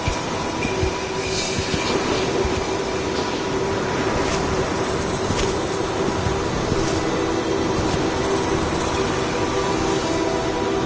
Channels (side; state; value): both; identical; correlation 1.00